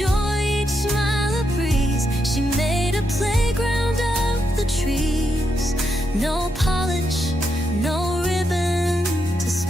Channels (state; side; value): normal; both; correlation 0.82